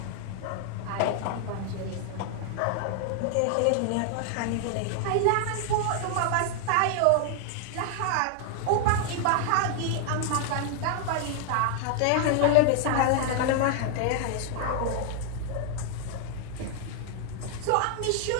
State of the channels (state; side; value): different; both; correlation 0.00